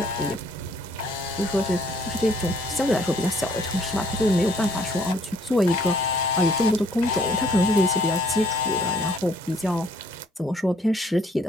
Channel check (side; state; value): both; normal; correlation 0.63